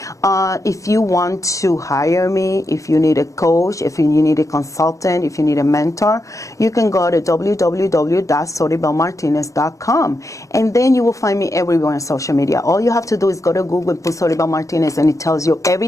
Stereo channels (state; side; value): late; right; 0.16 ms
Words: If you want to hire me, if you need a coach, if you need a consultant, if you need a mentor, you can go to www.soribelmartinez.com, and then you will find me everywhere on social media. All you have to do is go to Google and put Soribel Martinez, and it tells you